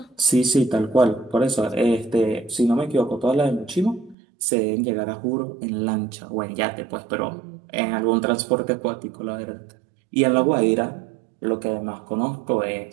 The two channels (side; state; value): left; drops out; at 4.2 s